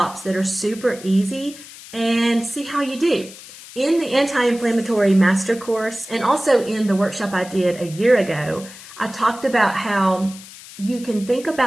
that are super easy and see how you do. In the anti-inflammatory master course, and also in the workshop I did a year ago, I talked about how you can think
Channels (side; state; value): left; noise; hiss, 17 dB below the sound